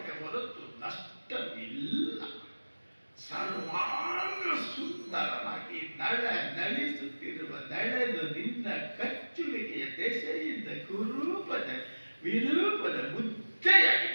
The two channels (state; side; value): inverted; both; correlation -1.00